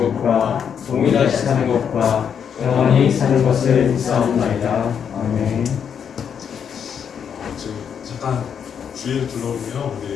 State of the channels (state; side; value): quieter; right; 7.7 dB